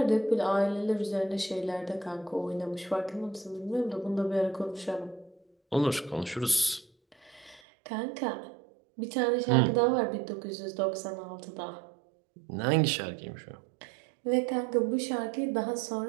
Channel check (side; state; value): left; drops out; at 7.6 s